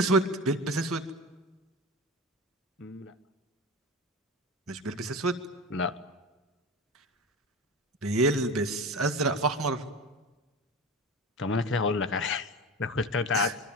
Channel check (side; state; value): both; normal; correlation 0.28